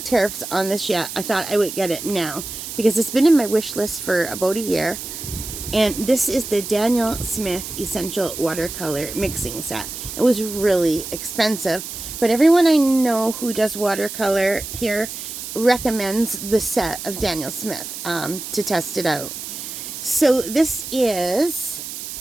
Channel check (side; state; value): right; noise; hiss, 8 dB below the sound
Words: tariffs on this yet, I thought I would get it now, because it's been in my wish list for about a year. And this is the Daniel Smith Essential Watercolor Mixing Set. It was really expensive, but everyone I know who does watercolor here recommends the set of Daniel Smith to test it out. So this is